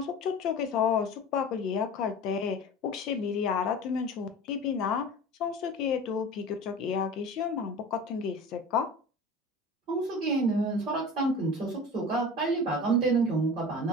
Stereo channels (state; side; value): normal; both; correlation 0.36